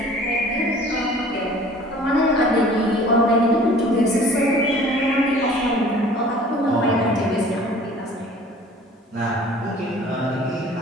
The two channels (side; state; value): both; normal; correlation 0.49